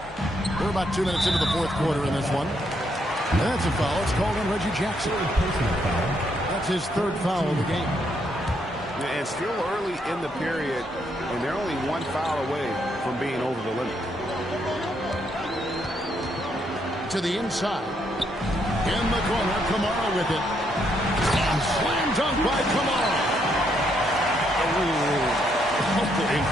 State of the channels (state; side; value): normal; both; correlation 0.75